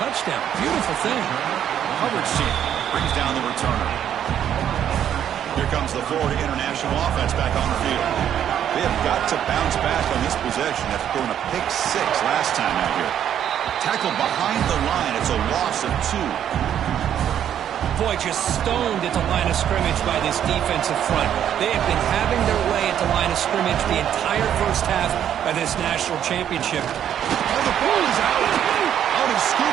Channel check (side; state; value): left; quieter; 9.9 dB